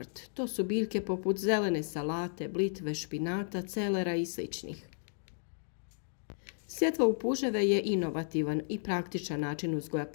To su biljke poput zelene salate, blitve, špinata, celera i sličnih. Sjetva u puževe je inovativan i praktičan način uzgoja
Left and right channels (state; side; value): silent; right; digital silence